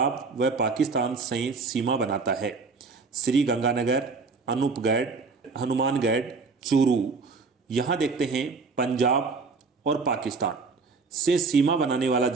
व पाकिस्तान से सीमा बनाता है? श्री गंगानगर, अनूपगढ़, हनुमानगढ़, चूरू। यहाँ देखते हैं पंजाब और पाकिस्तान से सीमा बनाने वाला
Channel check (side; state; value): left; quieter; 4.4 dB